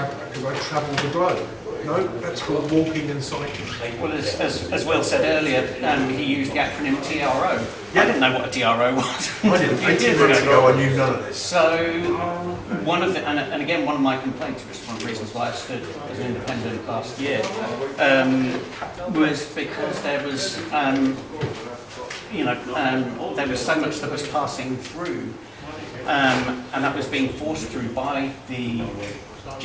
because I travel the globe. No, that's called walking and cycling. Well, as Will said earlier, he used the acronym TRO. I didn't know what a TRO was. I didn't. 18 months ago, I knew none of this. So, one of the, and again, one of my complaints, which is one of the reasons why I stood as an independent last year, was because there was, there was so much that was passing through, and that was being forced through by the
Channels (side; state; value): both; identical; correlation 1.00